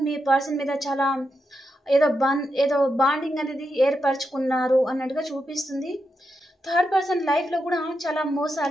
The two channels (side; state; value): both; normal; correlation 0.85